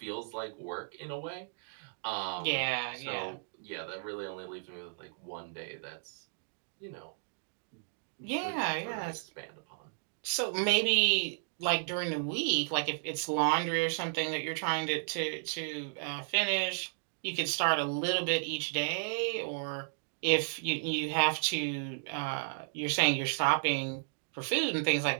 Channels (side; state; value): left; silent; digital silence